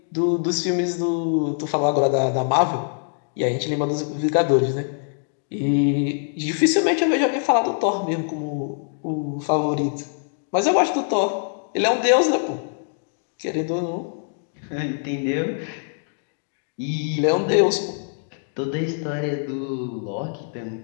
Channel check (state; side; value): silent; right; digital silence